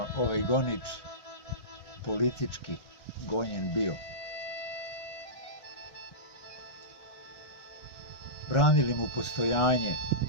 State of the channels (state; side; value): late; right; 1.4 ms